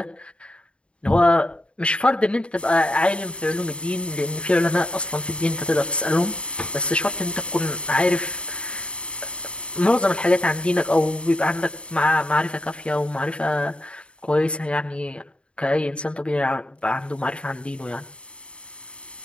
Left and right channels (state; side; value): late; right; 0.057 ms